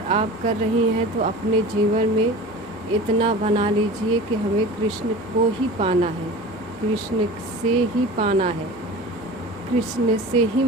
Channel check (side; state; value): both; normal; correlation 0.36